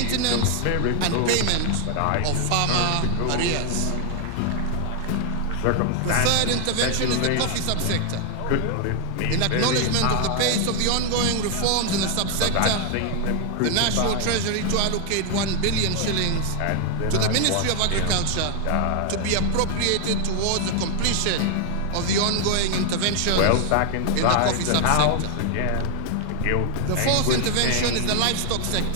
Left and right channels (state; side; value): different; both; correlation 0.00